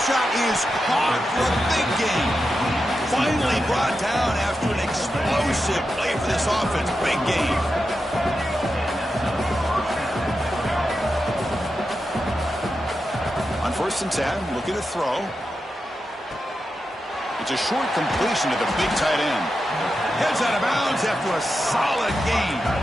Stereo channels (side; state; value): both; normal; correlation 0.89